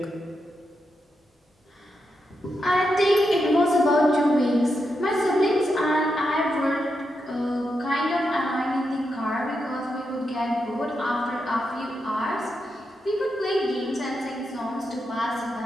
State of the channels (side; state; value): both; normal; correlation 0.85